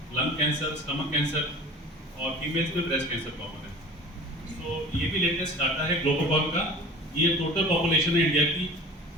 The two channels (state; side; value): normal; both; correlation 0.41